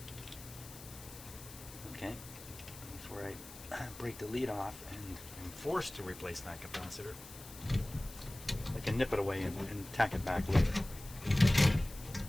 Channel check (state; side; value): noise; left; hiss, 16 dB below the sound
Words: Okay. Before I break the lead off and I'm forced to replace that capacitor, I can nip it away and tack it back later.